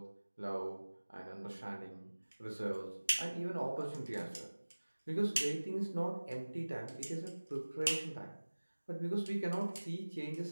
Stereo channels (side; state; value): both; inverted; correlation -1.00